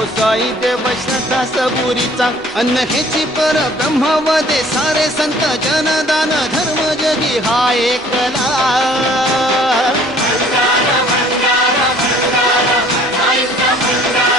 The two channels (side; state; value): right; noise; rumble, 27 dB below the sound